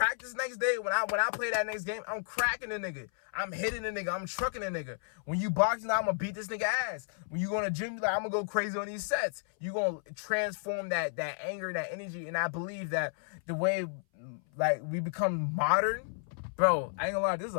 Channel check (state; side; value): silent; right; 56 dB below the other